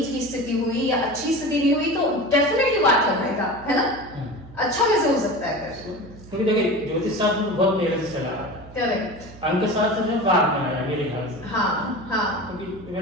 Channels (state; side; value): noise; right; hum, 18 dB below the sound